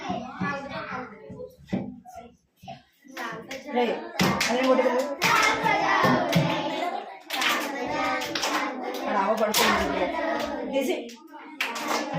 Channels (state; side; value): identical; both; correlation 1.00